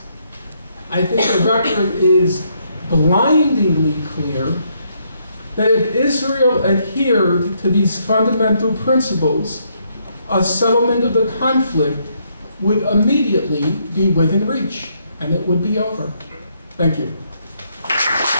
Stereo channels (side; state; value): both; inverted; correlation -0.73